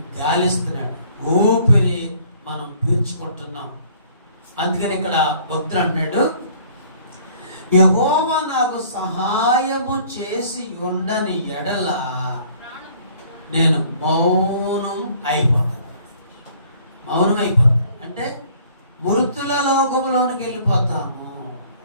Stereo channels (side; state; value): both; inverted; correlation -0.56